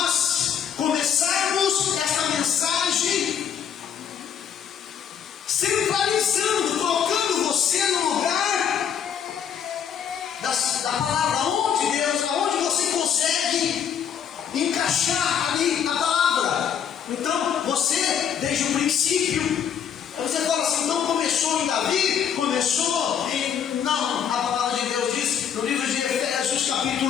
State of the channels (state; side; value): quieter; right; 8.3 dB